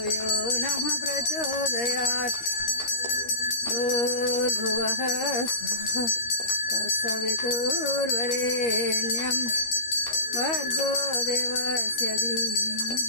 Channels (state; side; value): late; right; 13 ms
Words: यो नः प्रचोदयात्। भूर्भुवः स्वः तत्सवितुर्वरेण्यं भर्गो देवस्य